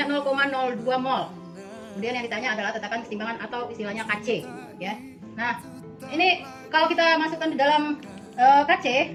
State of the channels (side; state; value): both; identical; correlation 1.00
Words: 0,02 mol. Kemudian yang ditanya adalah tetapan kesetimbangan atau istilahnya KC ya. Nah, ini kalau kita masukkan di dalam